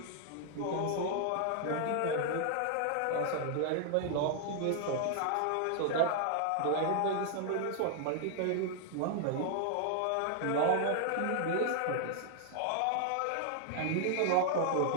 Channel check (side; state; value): both; different; correlation 0.00